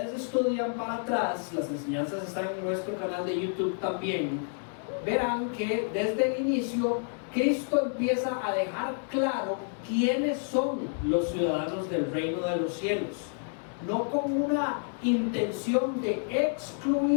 estudian para atrás, las enseñanzas están en nuestro canal de YouTube también, verán que desde el inicio Cristo empieza a dejar claro quiénes son los ciudadanos del reino de los cielos, no con una intención de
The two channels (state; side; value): silent; right; 58 dB below the other